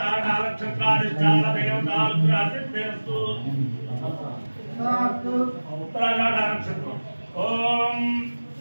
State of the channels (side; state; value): both; inverted; correlation -1.00